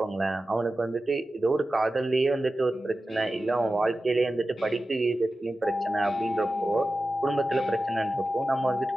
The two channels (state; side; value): normal; both; correlation 0.94